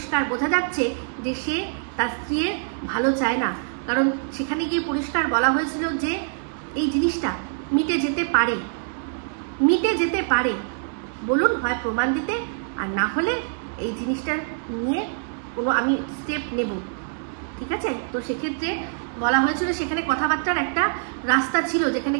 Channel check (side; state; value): left; silent; digital silence